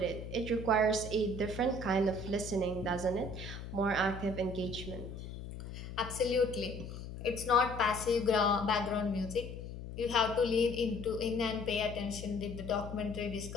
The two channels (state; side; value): noise; left; hum, 9 dB below the sound